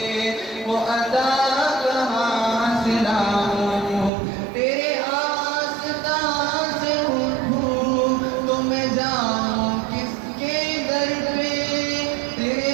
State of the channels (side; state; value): left; drops out; at 4.1 s